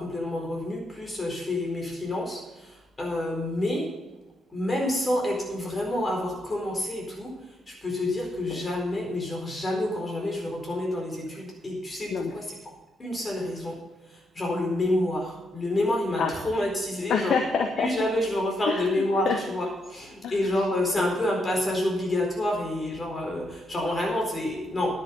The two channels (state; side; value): normal; both; correlation 0.80